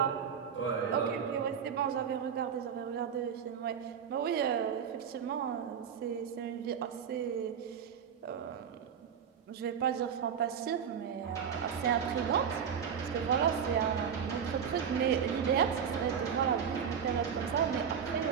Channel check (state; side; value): quieter; left; 7.5 dB